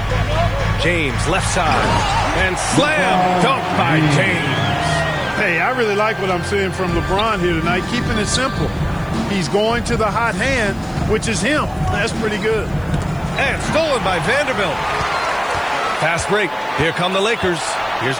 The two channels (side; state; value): left; noise; hiss, 29 dB below the sound